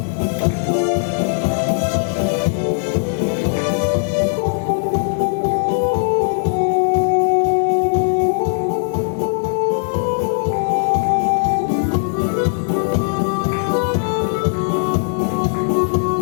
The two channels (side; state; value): right; silent; 56 dB below the other